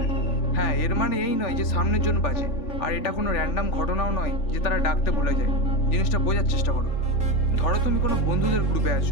হ্যাঁ, এর মানে এই নয় যে সামনের জন বাজে, আর এটা কোনো র্যান্ডাম ঘটনাও নয় যে তারা ডাকতে ভুলে যায়। জিনিসটা বোঝার চেষ্টা করো। ধরো তুমি কোনো বন্ধুদের গ্রুপে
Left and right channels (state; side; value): late; right; 3.4 ms